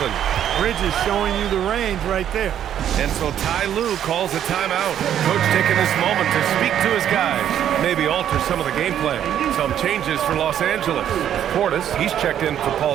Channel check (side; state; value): left; quieter; 10.1 dB